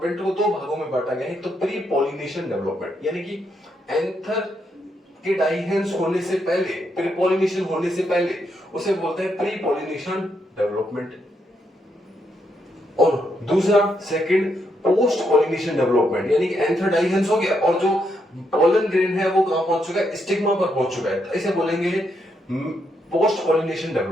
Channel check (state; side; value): normal; both; correlation 0.79